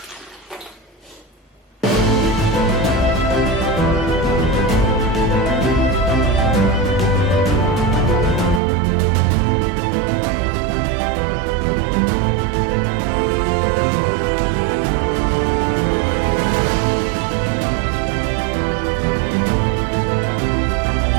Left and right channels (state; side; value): drops out; left; at 8.6 s